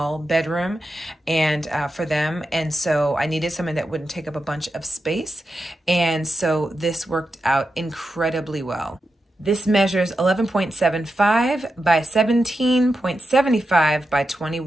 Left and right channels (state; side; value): normal; both; correlation 0.89